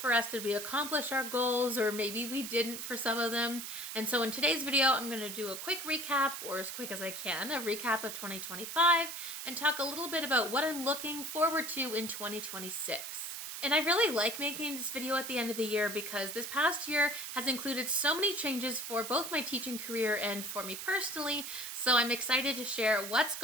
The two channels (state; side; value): noise; right; hiss, 7 dB below the sound